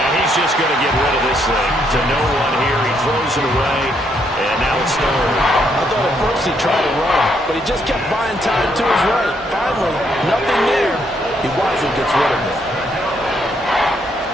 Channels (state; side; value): normal; both; correlation 0.73